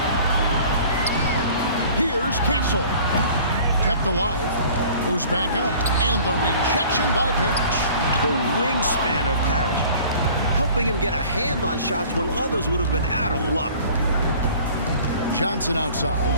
Here's Castle. Kept alive. Goes back up. And the rejection by Parrish. The wingspan of Parrish, helping him get a hand on shots when others would have been out of luck. Johnson outside.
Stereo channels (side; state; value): both; inverted; correlation -0.48